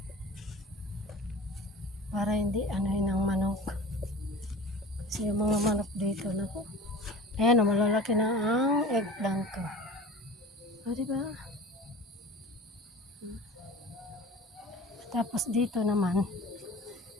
Para hindi anuhin ang manok. Kasi yung mga manok dito na ko. Ayan, malalaki na ang eggplant ko. O, diba? Tapos dito naman,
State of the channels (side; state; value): both; normal; correlation 0.40